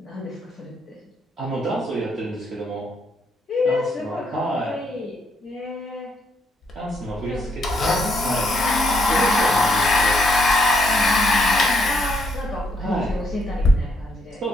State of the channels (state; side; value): normal; both; correlation 0.74